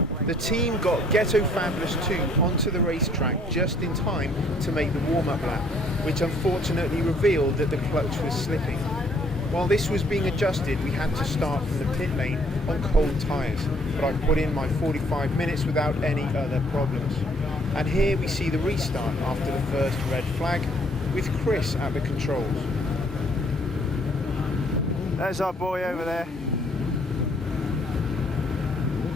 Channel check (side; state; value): both; normal; correlation 0.63